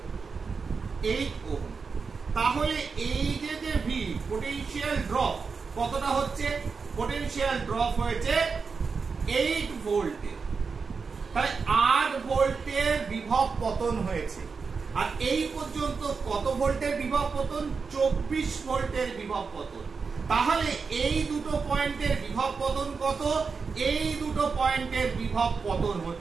8 ওহম। তাহলে এই যে V পোটেনশিয়াল ড্রপ কতটা হচ্ছে, পোটেনশিয়াল ড্রপ হয়েছে 8 ভোল্টে, তাহলে 8 ভোল্টের বিভব পতন হয়েছে। আর এই পর্যন্ত কত ভোল্টের বিভব পতন, 24 ভোল্টের বিভব পতন। তাহলে এই দুটো পয়েন্টের বিভব পতন কত, এই দুটো পয়েন্টের বিভব পতন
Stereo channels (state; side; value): quieter; left; 5.0 dB